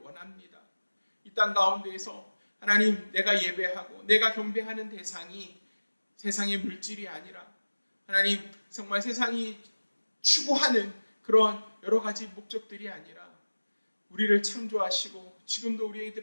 이 땅 가운데에서 하나님, 내가 예배하고 내가 경배하는 대상이 세상의 물질이 아니라 하나님 정말 세상이 추구하는 그런 여러 가지 목적들이 아니라 우리를 창조하시고 지금도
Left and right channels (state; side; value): inverted; both; correlation -1.00